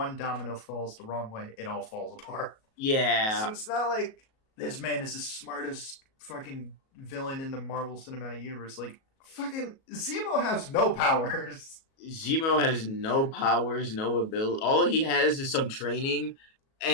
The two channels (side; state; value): right; late; 37 ms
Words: domino falls the wrong way, it all falls apart. Yeah. So it's not like this man is the smartest fucking villain in the Marvel Cinematic Universe. Like, fucking Zemo has no powers. Zemo has no powers, no ability. All he has is some training